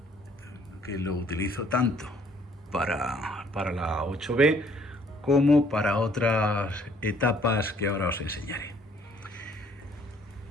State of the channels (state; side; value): normal; both; correlation 0.62